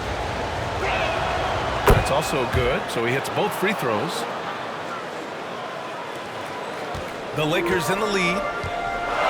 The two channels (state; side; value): identical; both; correlation 1.00